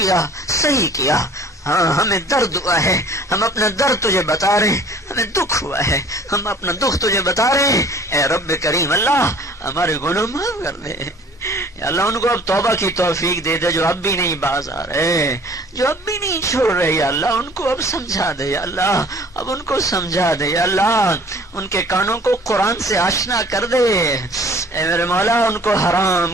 صحیح کیا. ہاں ہمیں درد ہوا ہے, ہم اپنا درد تجھے بتا رہے ہیں. ہمیں دکھ ہوا ہے, ہم اپنا دکھ تجھے بتا رہے ہیں. اے رب کریم اللہ, ہمارے گناہ معاف کر دے. یا اللہ ان کو اب توبہ کی توفیق دے دے جو اب بھی نہیں باز آ رہے, جو اب بھی نہیں چھوڑ رہے. یا اللہ ان کو اب سمجھا دے, یا اللہ اب ان کو سمجھا دے. یا اللہ ان کے کانوں کو قرآن سے آشنا کر دے. اے میرے مولا ان کو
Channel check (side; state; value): both; normal; correlation 0.51